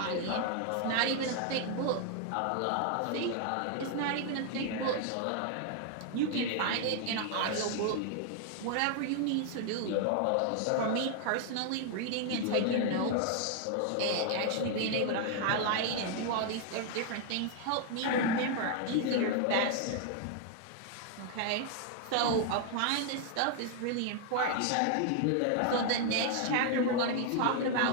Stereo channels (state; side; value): different; both; correlation 0.00